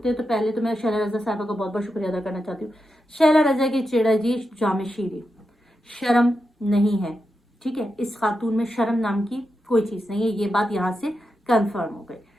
हैं। तो पहले तो मैं शैला रजा साहबा का बहुत बहुत शुक्रिया अदा करना चाहती हूँ। शैला रजा की चिड़ा जी जामे शीरी, शर्म नहीं है, ठीक है। इस खातून में शर्म नाम की कोई चीज़ नहीं है, ये बात यहाँ से कंफर्म हो गई।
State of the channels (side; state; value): both; normal; correlation 0.88